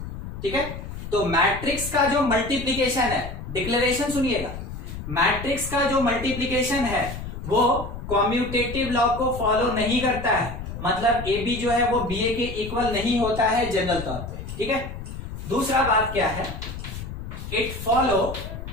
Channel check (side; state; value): left; noise; rumble, 9 dB below the sound